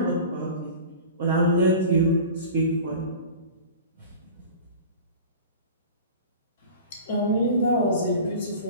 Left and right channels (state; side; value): inverted; both; correlation -0.37